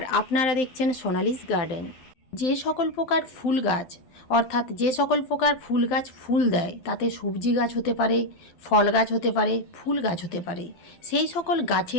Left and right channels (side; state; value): right; late; 12 ms